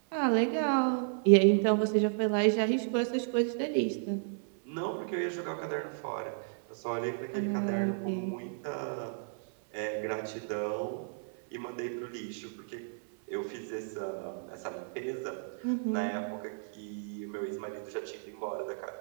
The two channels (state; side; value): silent; left; 56 dB below the other